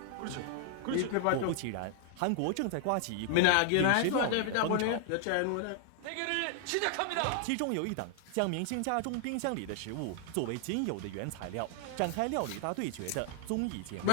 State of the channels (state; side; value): different; both; correlation 0.00